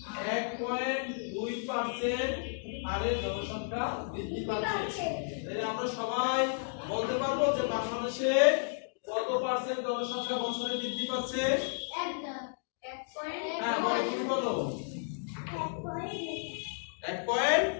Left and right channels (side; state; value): right; silent; digital silence